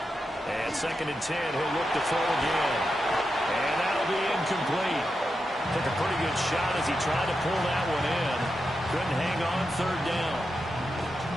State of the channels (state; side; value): normal; both; correlation 0.88